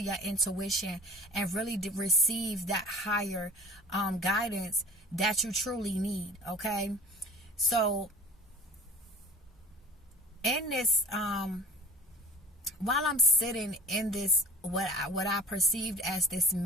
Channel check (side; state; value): both; normal; correlation 0.41